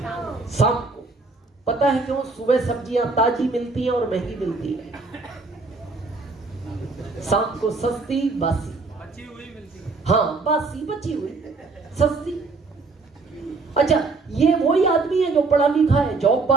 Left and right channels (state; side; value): quieter; left; 3.9 dB